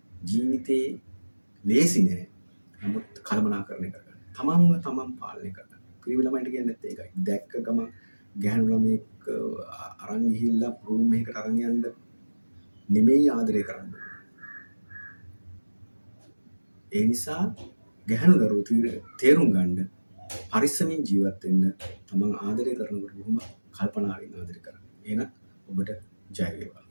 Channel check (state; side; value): inverted; both; correlation -1.00